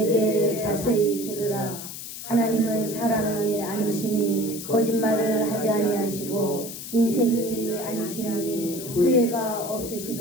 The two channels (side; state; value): left; noise; hiss, 10 dB below the sound